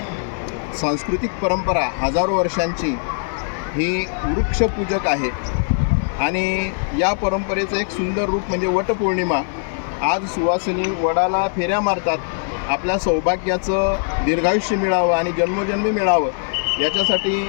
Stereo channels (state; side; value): silent; right; digital silence